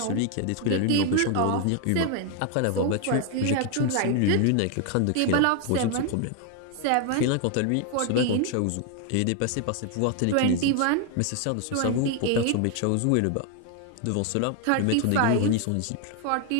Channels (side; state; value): both; different; correlation 0.00